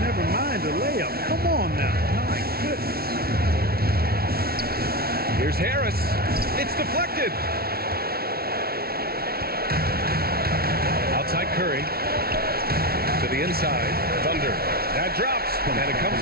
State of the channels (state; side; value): late; left; 0.44 ms